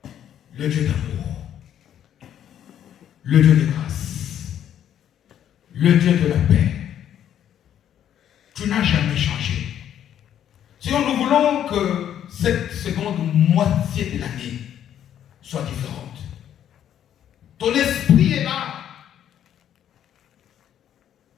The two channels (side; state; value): right; quieter; 10.2 dB